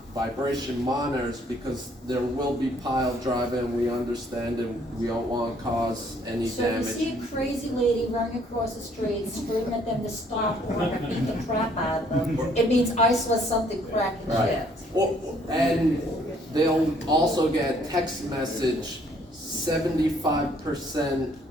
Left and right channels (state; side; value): normal; both; correlation 0.63